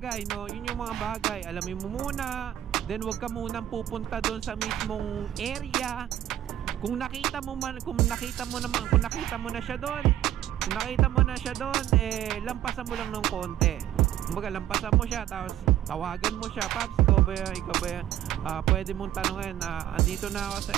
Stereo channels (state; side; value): quieter; left; 12.2 dB